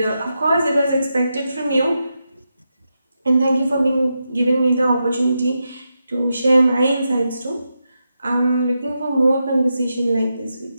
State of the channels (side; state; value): both; inverted; correlation -0.87